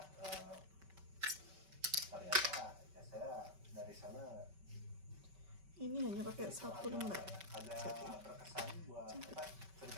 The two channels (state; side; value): late; left; 5.2 ms